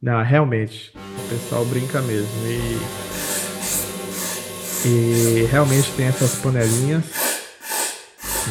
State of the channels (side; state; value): both; identical; correlation 1.00